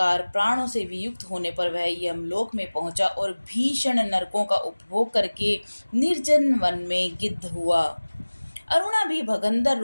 प्राणों से वियुक्त होने पर वह यमलोक में पहुंचा और भीषण नरकों का उपभोग करके निर्जन वन में गिद्ध हुआ। अरुणा भी भगंदर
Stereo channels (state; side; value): inverted; both; correlation -1.00